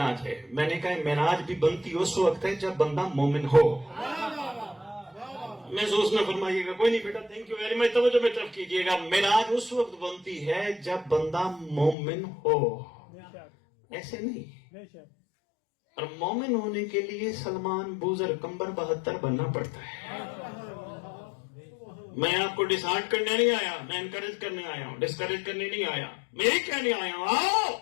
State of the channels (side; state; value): right; drops out; at 12.0 s